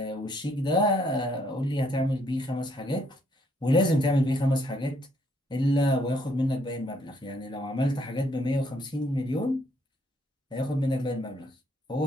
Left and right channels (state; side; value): normal; both; correlation 0.69